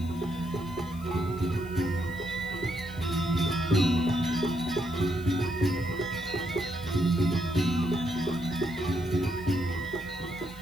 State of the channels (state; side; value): noise; left; hiss, 22 dB below the sound